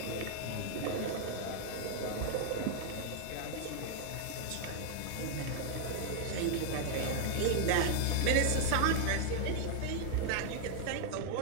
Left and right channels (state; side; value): different; both; correlation 0.00